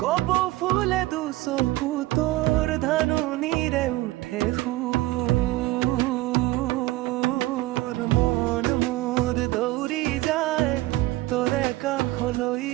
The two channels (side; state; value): left; quieter; 18.1 dB